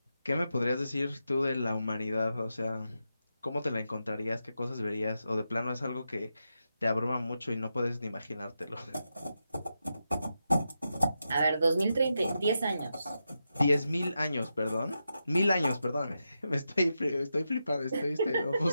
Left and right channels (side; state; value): both; inverted; correlation -0.87